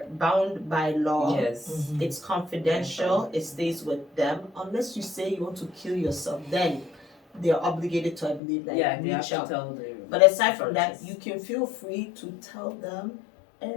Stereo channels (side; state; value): right; drops out; at 8.4 s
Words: bound by law. Yes. It's confidential. It stays with them. Unless you say you want to kill yourself, then they're obligated to, I believe, like Yeah, they have reach to out. tell the. But aside from that, you can feel free to tell them